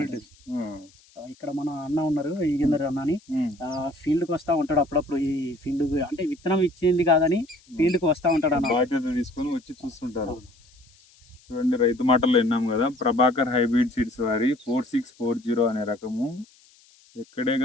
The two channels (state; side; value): noise; left; hiss, 29 dB below the sound